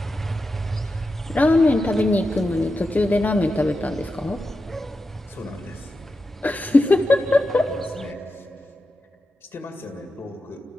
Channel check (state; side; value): normal; both; correlation 0.90